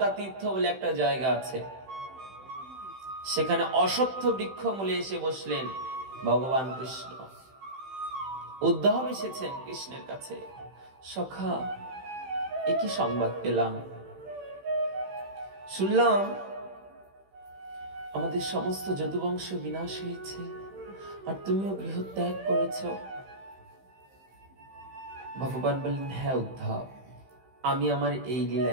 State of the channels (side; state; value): left; late; 15 ms